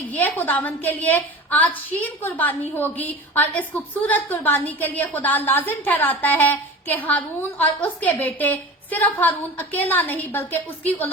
ये खुदावंद के लिए आज शीन कुर्बानी होगी। और इस खूबसूरत कुर्बानी के लिए खुदा लाजिम ठहराता है कि हारून और उसके बेटे, सिर्फ हारून अकेला नहीं बल्कि उसकी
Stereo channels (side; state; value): both; normal; correlation 0.34